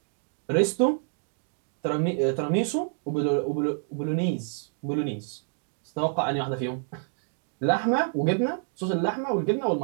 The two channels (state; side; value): silent; left; digital silence